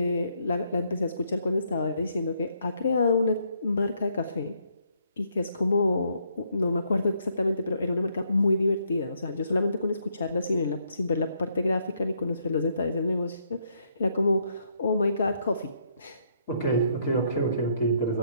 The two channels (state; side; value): inverted; both; correlation -0.72